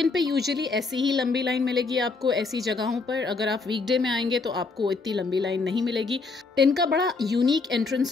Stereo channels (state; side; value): quieter; right; 4.1 dB